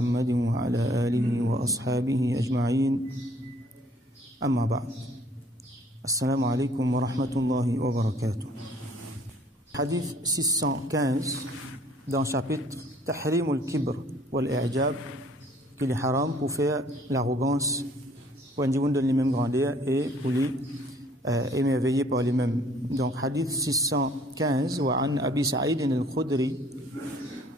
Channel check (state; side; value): normal; both; correlation 0.58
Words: وعلى آله وأصحابه أجمعين أما بعد السلام عليكم ورحمة الله وبركاته. Hadith 615 dans le chapitre Tahrim al-Kibr wal-I'jab, qu'il est haram pour faire l'arrogance, pour individu donne les mêmes grandeurs et pour les émerveiller par les mêmes. Donc hadith 615 wa an Abi Sa'id al-Khudri